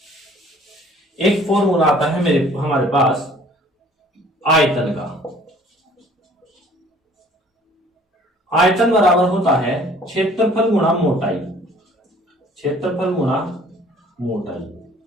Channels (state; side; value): normal; both; correlation 0.54